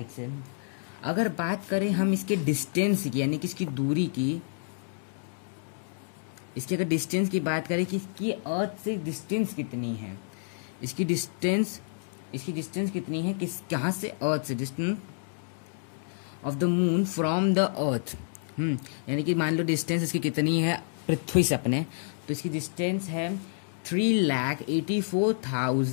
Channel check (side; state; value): right; silent; digital silence